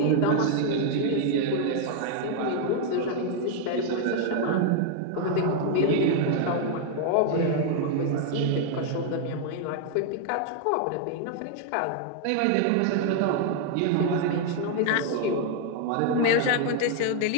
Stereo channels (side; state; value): both; different; correlation 0.00